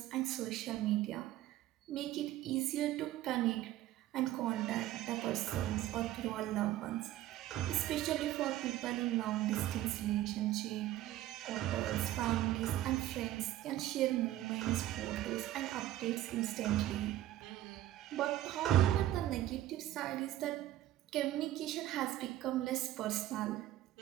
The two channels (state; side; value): quieter; left; 14.1 dB